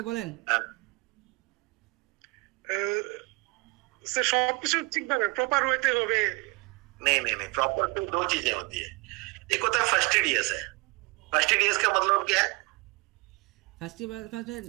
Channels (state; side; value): quieter; left; 27.0 dB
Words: বলেন। हाँ, স্যার সবকিছু ঠিকভাবে প্রপার হইতে হবে। नहीं, प्रॉपर टू दो चीजें होती है। एक होता है फर्स्टिडियस है। फर्स्टिडियस का मतलब क्या है? फर्स्ट